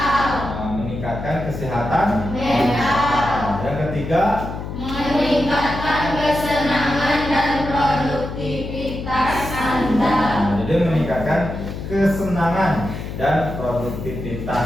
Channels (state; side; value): noise; left; hum, 7 dB below the sound